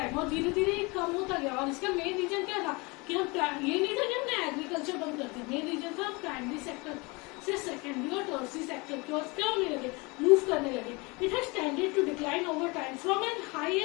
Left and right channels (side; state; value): right; quieter; 26.9 dB